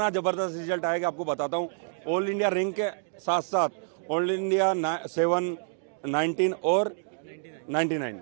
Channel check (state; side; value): silent; left; digital silence